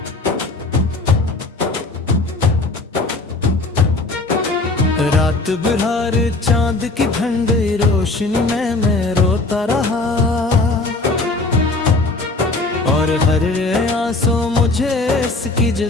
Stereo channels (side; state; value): right; quieter; 3.2 dB